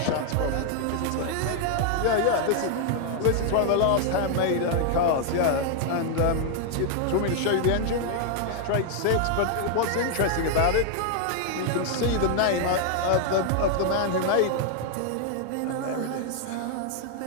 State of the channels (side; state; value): both; different; correlation 0.00